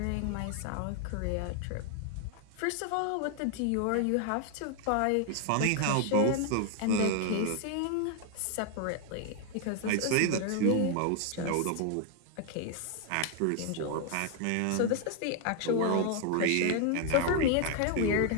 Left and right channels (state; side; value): different; both; correlation 0.00